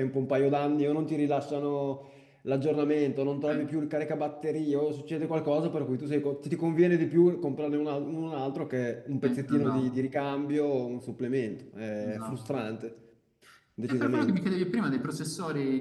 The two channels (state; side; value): identical; both; correlation 1.00